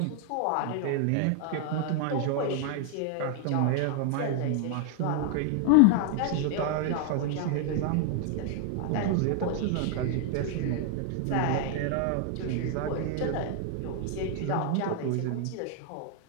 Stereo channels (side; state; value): both; different; correlation 0.00